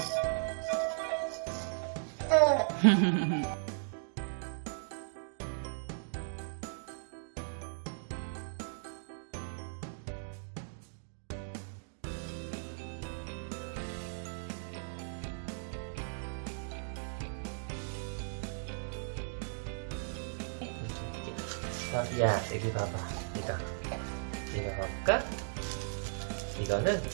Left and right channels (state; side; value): silent; left; digital silence